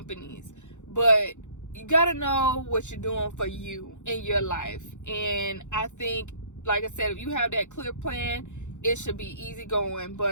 But you got to know what you're doing for you in your life. And I think, like I said, if you have that clear plan, it should be easy going.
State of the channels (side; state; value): right; late; 0.84 ms